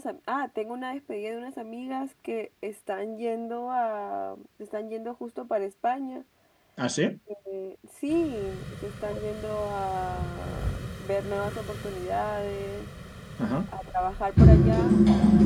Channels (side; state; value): both; identical; correlation 1.00